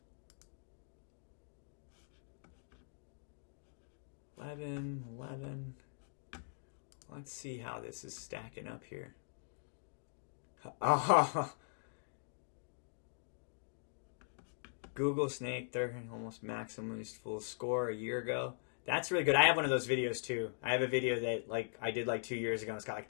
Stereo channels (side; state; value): right; silent; digital silence